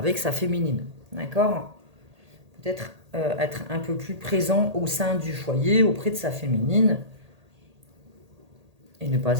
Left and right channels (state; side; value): late; left; 1.8 ms